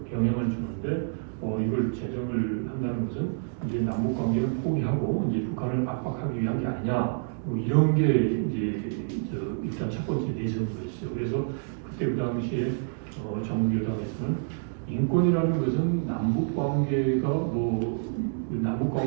영향을 주는데 이걸 제정을 한다는 것은 이제 남북 관계를 포기하고 이제 북한을 압박하기 위한 게 아니냐 뭐 이런 게 이제 일단 첫 번째 내세였어요. 그래서 그때 그 당시에 정부 여당에서는 인권이라는 것은 남북 관계가 남북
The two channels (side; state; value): left; silent; digital silence